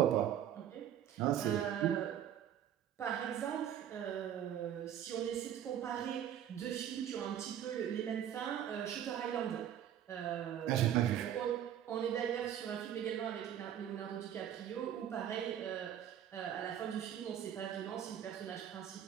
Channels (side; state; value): left; quieter; 10.3 dB